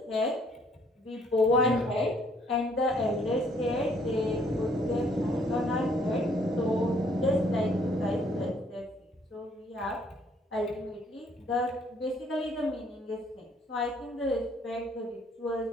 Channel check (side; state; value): both; normal; correlation 0.64